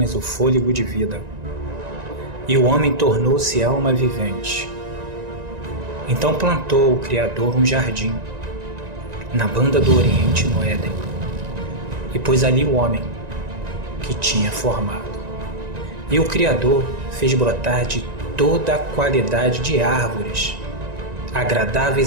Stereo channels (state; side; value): late; left; 1.9 ms